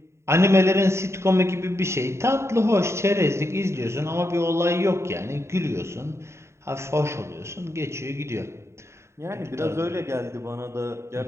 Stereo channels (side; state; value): left; late; 0.13 ms